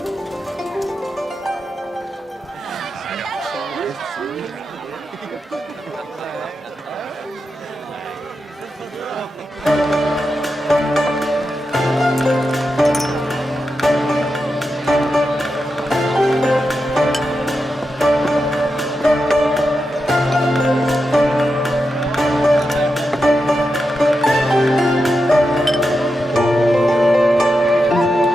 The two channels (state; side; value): normal; both; correlation 0.88